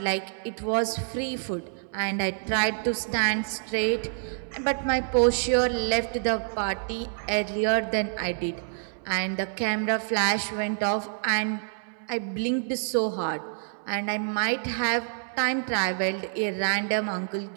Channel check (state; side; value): silent; left; digital silence